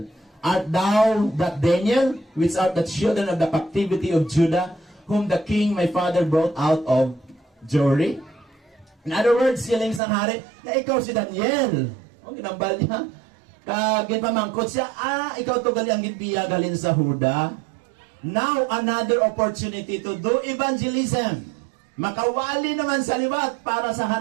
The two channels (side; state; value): left; drops out; at 10.0 s